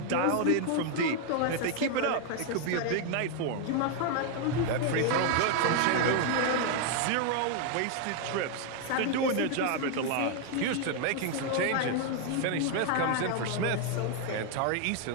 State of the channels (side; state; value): both; different; correlation 0.01